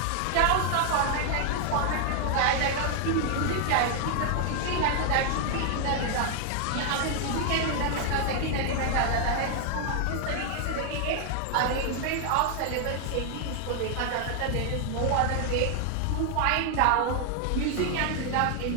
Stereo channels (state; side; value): different; both; correlation 0.00